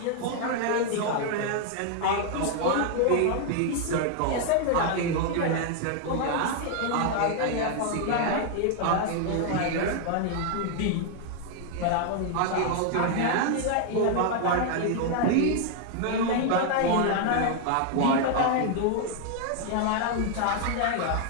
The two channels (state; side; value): different; both; correlation 0.00